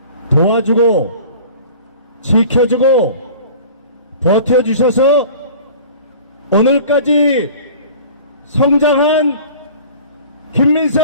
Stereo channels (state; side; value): inverted; both; correlation -0.43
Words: 도와주고 지켜주고 버텨주셔서 오늘까지 성장한 김민석